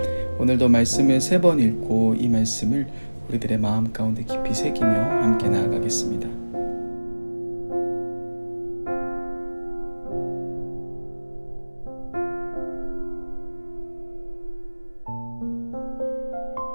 오늘도 말씀을 3번 읽고 이 말씀을 우리들의 마음 가운데 깊이 새기며 함께 나아가겠습니다.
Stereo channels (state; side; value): inverted; both; correlation -1.00